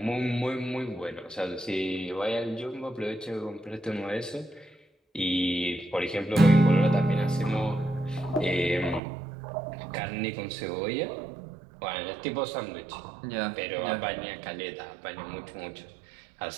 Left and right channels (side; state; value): left; drops out; at 9.0 s